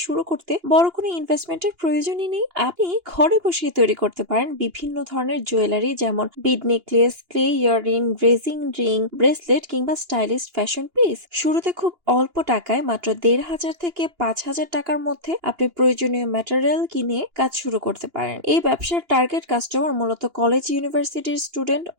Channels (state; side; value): late; left; 2.9 ms